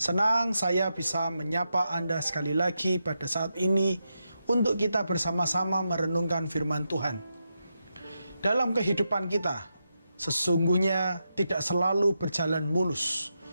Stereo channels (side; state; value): both; inverted; correlation -0.86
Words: saya bisa menyapa Anda sekali lagi pada saat ini untuk kita bersama-sama merenungkan firman Tuhan. Dalam kehidupan kita, sesungguhnya tidak selalu berjalan mulus.